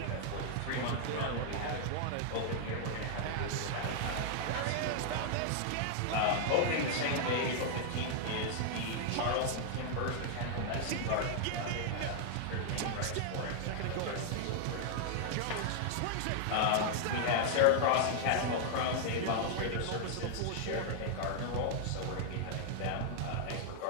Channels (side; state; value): both; different; correlation 0.00